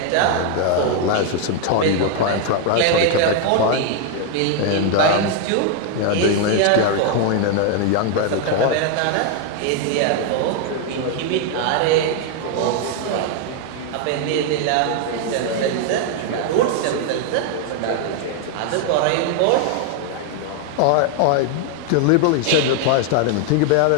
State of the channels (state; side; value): different; both; correlation 0.00